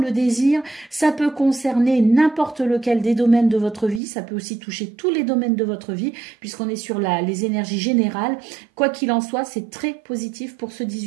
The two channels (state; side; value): drops out; left; at 4.0 s